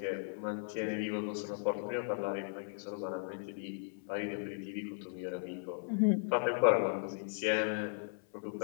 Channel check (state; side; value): silent; right; 53 dB below the other